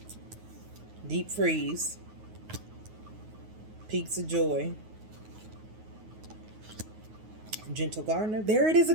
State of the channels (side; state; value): left; late; 9.4 ms